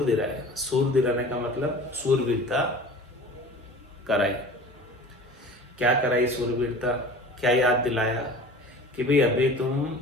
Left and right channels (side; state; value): both; normal; correlation 0.41